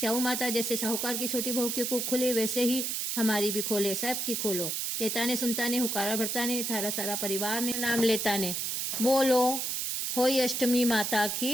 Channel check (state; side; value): noise; right; hiss, 1 dB below the sound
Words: माता जैसे साहूकार की छोटी बहू की कूख खुली, वैसे ही हमारी भी खोले, सब की खोलो। कहता ने सुनता ने, हुकारा भरता ने, थारा सारा परिवार ने नाम लेता ने। बोलो होई अष्टमी माता